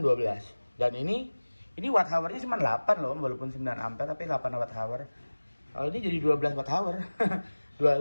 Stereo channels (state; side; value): inverted; both; correlation -1.00